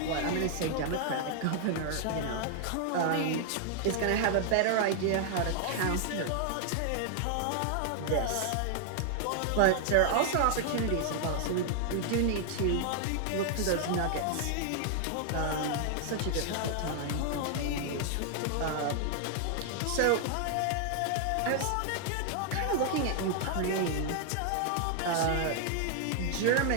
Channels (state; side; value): different; both; correlation 0.00